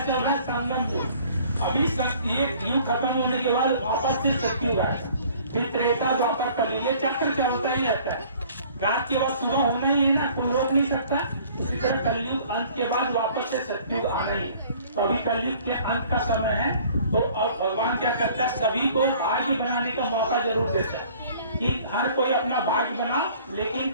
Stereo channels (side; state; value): both; inverted; correlation -0.53